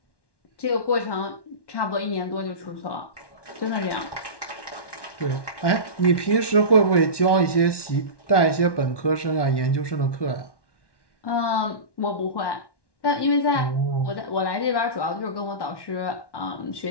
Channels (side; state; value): right; late; 1.1 ms